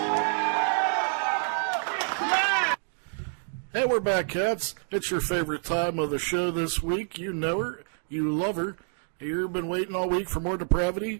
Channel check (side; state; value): left; silent; 60 dB below the other